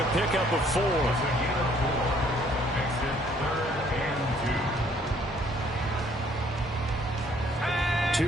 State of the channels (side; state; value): both; normal; correlation 0.63